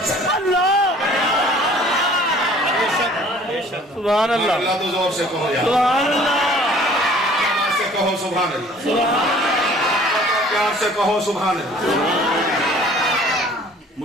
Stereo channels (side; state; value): both; normal; correlation 0.52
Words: سکتی۔ سبحان اللہ، اللہ تو زور سے کہو یار، سبحان اللہ، پیار سے کہو سبحان اللہ، پیار سے کہو سبحان اللہ۔